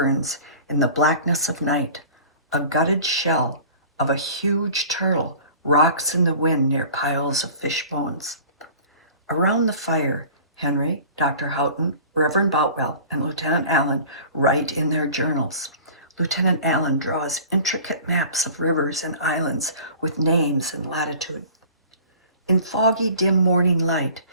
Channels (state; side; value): inverted; both; correlation -0.43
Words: in the blackness of night. A gutted shell of a huge turtle rocks in the wind near piles of fish bones. Around the fire, Henry, Dr. Houghton, Reverend Boutwell, and Lieutenant Allen write in their journals. Lieutenant Allen draws intricate maps of rivers and islands with names and latitude. In foggy, dim morning light,